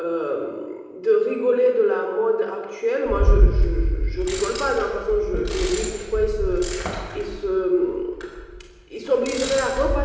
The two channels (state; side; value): identical; both; correlation 1.00